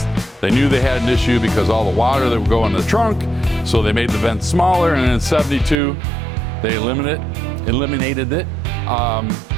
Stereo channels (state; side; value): drops out; left; at 5.8 s